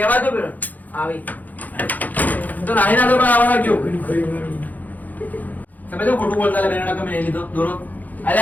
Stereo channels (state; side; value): late; right; 0.082 ms